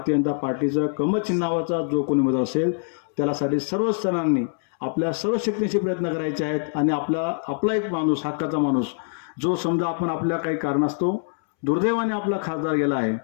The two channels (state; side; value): silent; right; 63 dB below the other